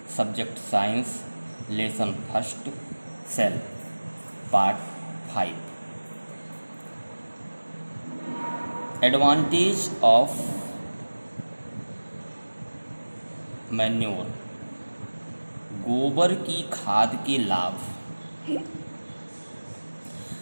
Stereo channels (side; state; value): both; inverted; correlation -1.00